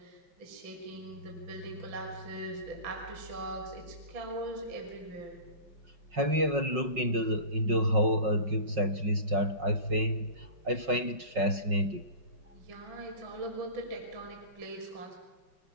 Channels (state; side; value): late; left; 5.4 ms